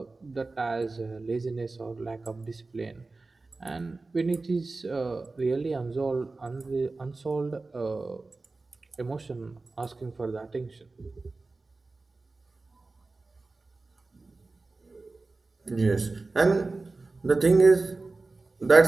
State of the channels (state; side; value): quieter; left; 3.5 dB